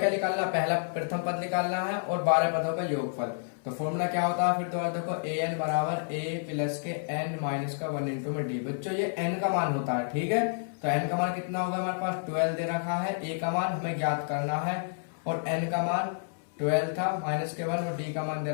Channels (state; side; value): silent; right; 58 dB below the other